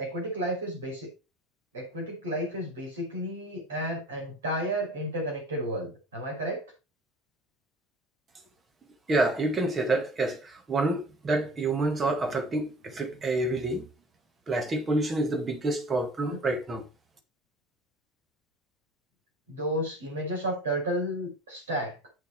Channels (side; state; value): both; normal; correlation 0.45